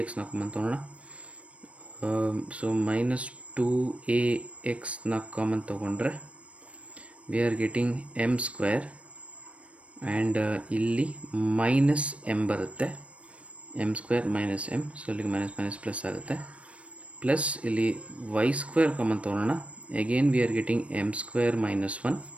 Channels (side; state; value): left; late; 0.063 ms